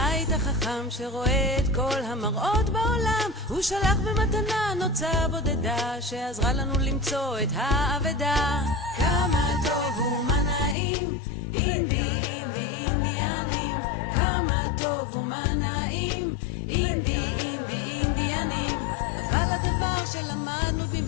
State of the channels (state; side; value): drops out; right; at 10.8 s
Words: החכם שרואה את כל המראות בעולם. הוא שלח במתנה נוצה בודדה שעזרה לנו למצוא את האבדה. כמה טוב ומה נעים, אינדי אינדי אינדיאנים. כמה טוב ומה נעים, אינדי אינדי אינדיאנים. אבל הדבר שלמדנו